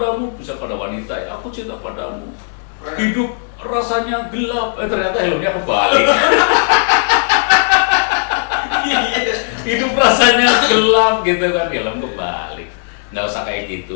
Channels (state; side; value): silent; right; digital silence